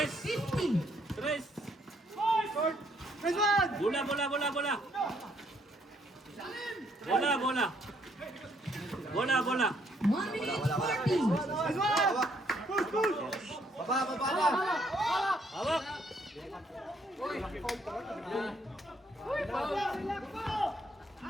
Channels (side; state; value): both; normal; correlation 0.69